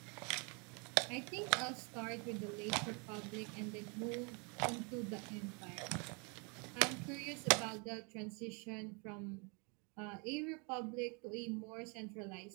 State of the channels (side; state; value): left; quieter; 33.1 dB